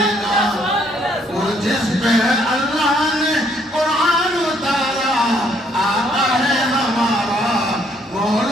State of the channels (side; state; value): both; normal; correlation 0.67